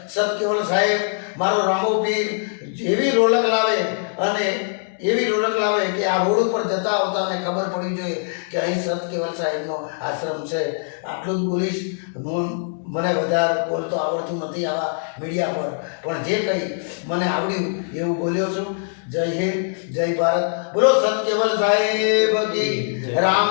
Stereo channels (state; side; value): silent; right; 64 dB below the other